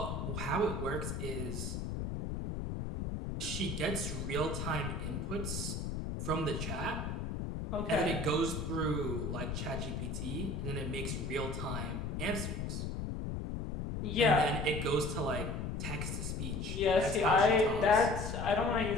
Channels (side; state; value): left; noise; rumble, 3 dB below the sound